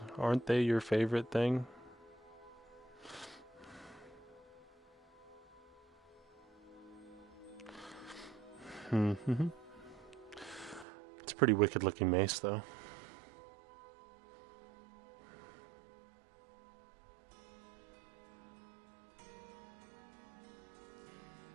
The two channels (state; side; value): drops out; left; at 10.9 s